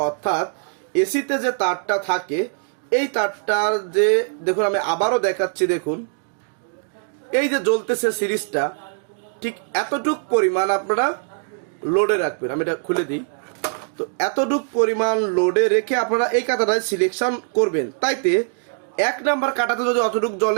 অর্থাৎ এসিতে যে তারটা থাকে এই তারটার যে দেখুন আমি আবারও দেখাচ্ছি, দেখুন এই যে জ্বলতেছে সিরিজটা, ঠিক এতটুক পরিমাণ আপনারা লোডে রাখবেন। আমি এটা খুলে দিই। তো এতটুক পরিমাণ লোডে রেখে আপনারা এই কাঁটাটায় সিলেকশন করবেন। তাইতে 1 নাম্বার কাঁটাতে যদি অতটুক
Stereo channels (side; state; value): left; silent; digital silence